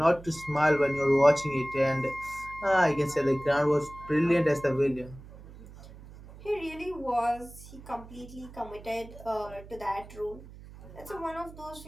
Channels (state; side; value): noise; right; hum, 18 dB below the sound